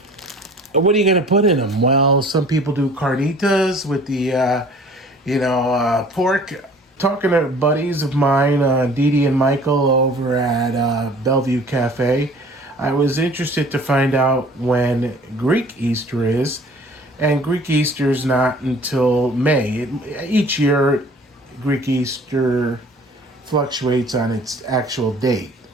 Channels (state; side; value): normal; both; correlation 0.50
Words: what are you going to put in them? Well, some people do carnitas with the, pork. Talking to buddies of mine, Dee and Michael over at Bellevue Cafe, I was interested to find out when Greek Easter is. And Greek Easter is not until May. Each year, Greek Easter fluctuates on its actual date.